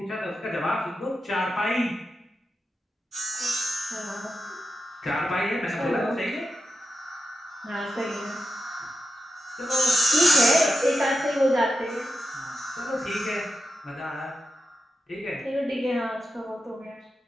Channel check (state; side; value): normal; both; correlation 0.89